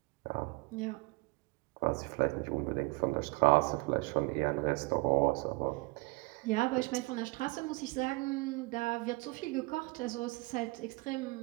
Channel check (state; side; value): quieter; left; 25.6 dB